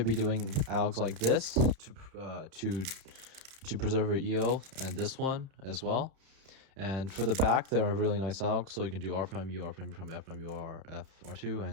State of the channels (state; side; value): late; left; 31 ms